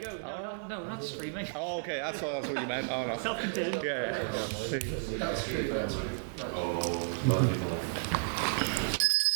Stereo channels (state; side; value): silent; left; digital silence